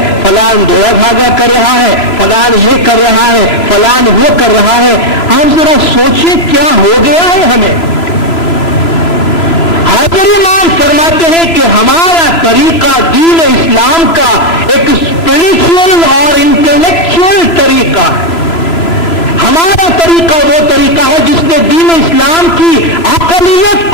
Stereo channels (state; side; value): late; right; 3.0 ms